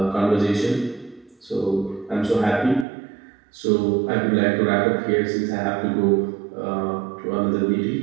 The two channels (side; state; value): left; drops out; at 2.9 s